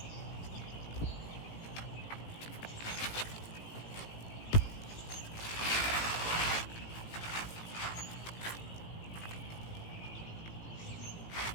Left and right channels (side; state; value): right; late; 18 ms